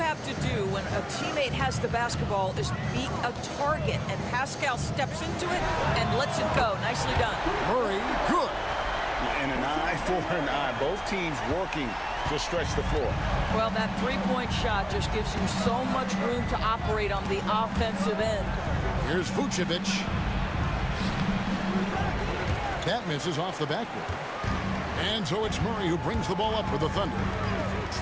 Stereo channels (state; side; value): identical; both; correlation 1.00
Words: to do when a teammate has the basketball is beat a target, and Pascal steps into it and lets it go. Nicely done. Murray, good. And an eye for an eye. Both teams working to stretch the floor. Well, that three-point shot just gives you so much room to operate on the offensive end. Here's Vucevic. That misses off the backboard. And so it's Murray who brings the ball up for the Thunder.